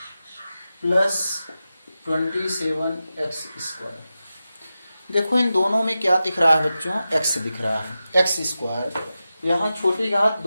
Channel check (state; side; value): inverted; both; correlation -0.92